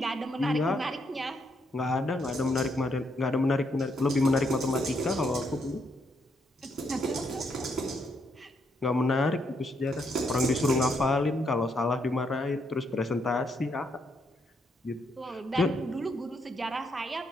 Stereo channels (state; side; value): normal; both; correlation 0.76